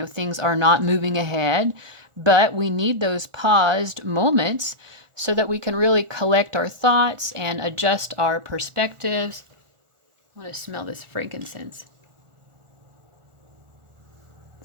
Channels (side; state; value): left; late; 1.4 ms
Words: things are not moving ahead. But we need those paused moments so that we can really collect our thoughts and adjust our perspectives. I want to smell this frankincense.